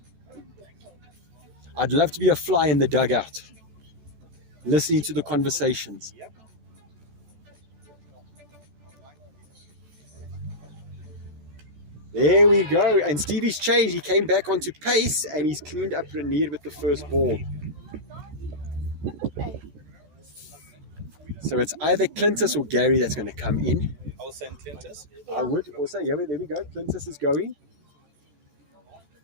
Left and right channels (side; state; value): left; late; 14 ms